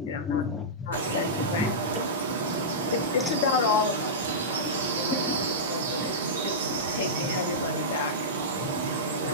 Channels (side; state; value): both; normal; correlation -0.14